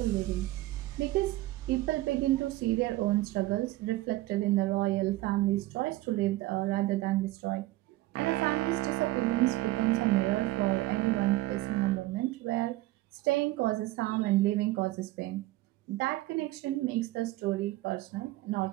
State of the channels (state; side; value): quieter; left; 17.7 dB